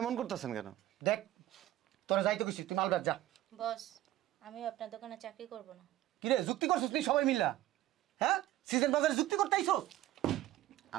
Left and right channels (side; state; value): left; quieter; 14.6 dB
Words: করতেছেন কেন? দেখ তোরা যাইতে গেছিস, তুই মাল বেচ যা। বস আমি আপনার দোকানে চাকরি করব না। কিরে যুক্তি করছিস তুই সবাই মিল্লা? হ্যাঁ সিজন বাজারে যুক্তি করতে আইছস?